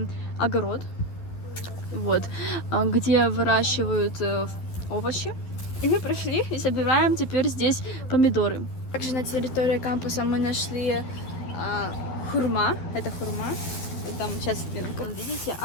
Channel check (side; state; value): right; late; 12 ms